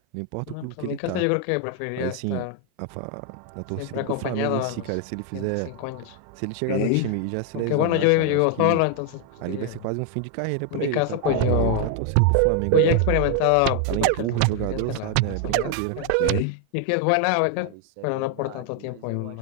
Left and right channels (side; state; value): both; different; correlation 0.01